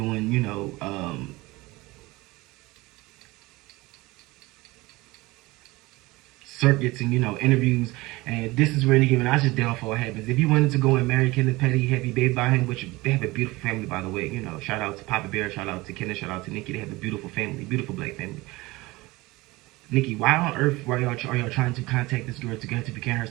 circuits and, you know, interviews. And this is where Nicki Minaj's downfall happens. If you wanted to go and marry Kenneth Petty, have your baby by him, which they have a beautiful family, by the way. You know, shout out to Papa Bear, shout out to Kenneth, shout out to Nicki. They have a beautiful family, beautiful black family. Nicki, why on earth are y'all trying to contact this girl to get her to begin her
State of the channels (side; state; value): left; quieter; 21.3 dB